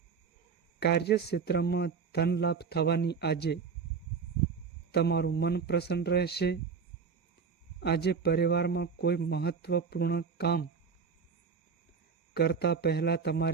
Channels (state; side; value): quieter; left; 5.7 dB